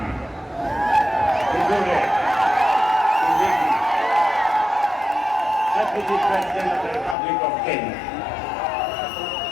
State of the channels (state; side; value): drops out; right; at 7.2 s